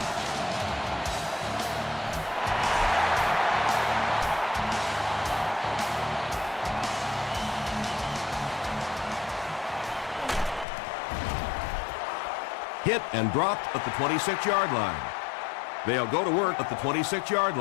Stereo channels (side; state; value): right; drops out; at 10.7 s